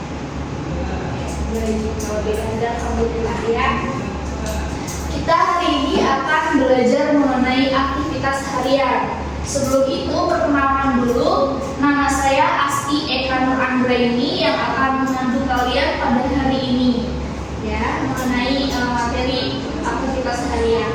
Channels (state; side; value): identical; both; correlation 1.00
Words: Baik, kalau tidak ada, alhamdulillah ya. Kita hari ini akan belajar mengenai aktivitas harian. Sebelum itu perkenalkan dulu, nama saya Asti Eka Nur Anggraini yang akan membantu kalian pada hari ini ya, mengenai materi aktivitas harian.